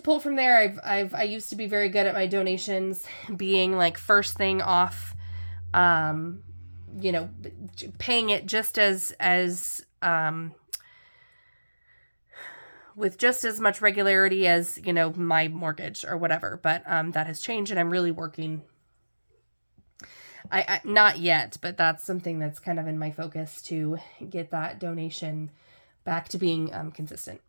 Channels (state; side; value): inverted; both; correlation -1.00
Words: pull from there. I used to be very good at my donations being like first thing off, paying it just as with just as much regularity as, my mortgage or whatever. But that has changed, and I'm really working. I not yet, but that's something that's kind of in my focus to get that donation back to being consistent.